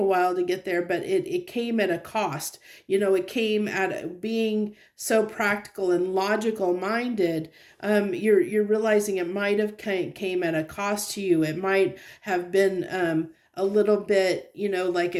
while to get there, but it came at a cost. It came at being so practical and logical minded. You're realizing it might have came at a cost to you. It might have been a little bit, like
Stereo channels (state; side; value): identical; both; correlation 1.00